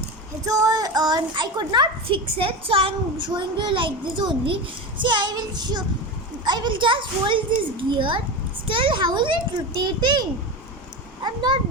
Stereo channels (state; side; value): normal; both; correlation 0.22